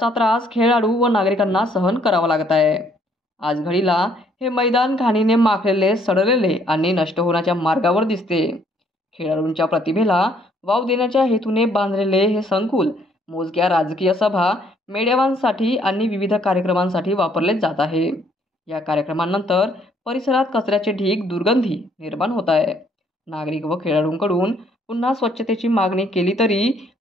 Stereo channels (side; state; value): both; normal; correlation 0.65